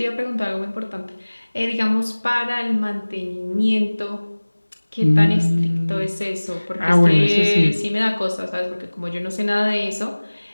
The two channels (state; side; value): inverted; both; correlation -1.00